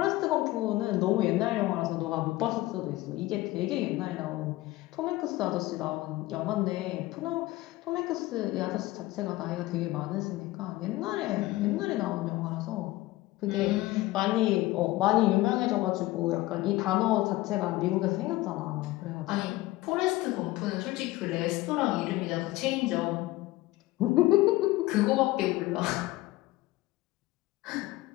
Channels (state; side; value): quieter; right; 18.2 dB